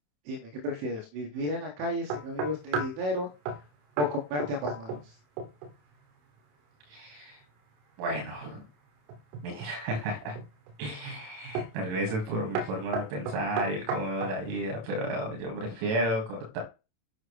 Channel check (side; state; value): left; late; 27 ms